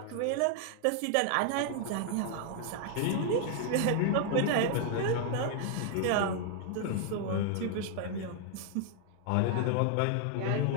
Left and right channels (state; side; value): different; both; correlation 0.00